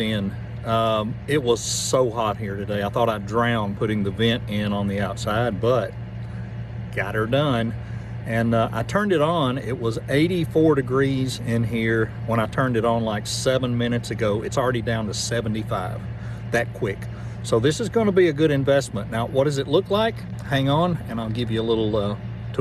It was so hot here today. I thought I'd drown putting the vent in on the outside, but got her done. And I turned it on. It was 84 degrees in here when I turned it on like 7 minutes ago. It's already down to 75 that quick. So this is going to be a good investment. Now, what does it look like? Hang on and I'll give you a little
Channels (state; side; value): identical; both; correlation 1.00